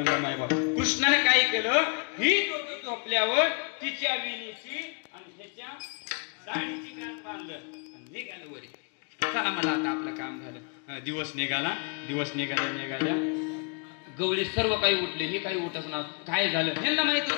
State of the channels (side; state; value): right; quieter; 35.0 dB